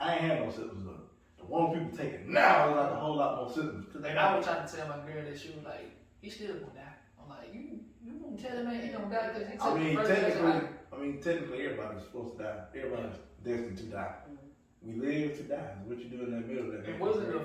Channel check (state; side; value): identical; both; correlation 1.00